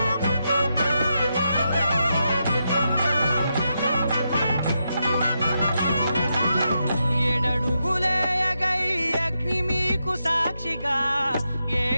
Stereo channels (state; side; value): inverted; both; correlation -0.85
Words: ఏడడుగులేయగై అగ్ని మీకు సాక్షిగా